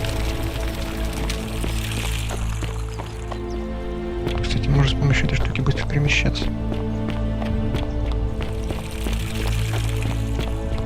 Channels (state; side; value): identical; both; correlation 1.00